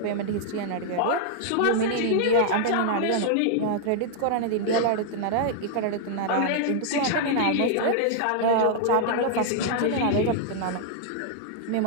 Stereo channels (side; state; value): both; different; correlation -0.01